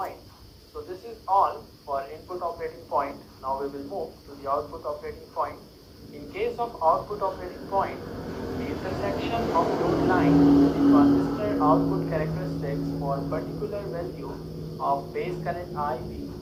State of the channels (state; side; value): identical; both; correlation 1.00